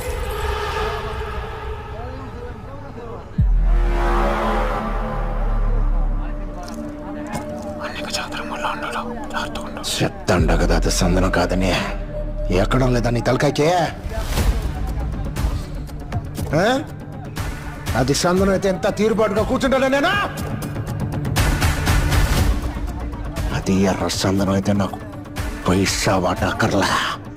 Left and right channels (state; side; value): identical; both; correlation 1.00